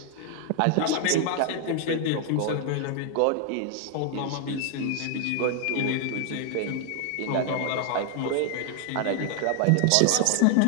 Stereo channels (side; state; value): both; different; correlation 0.00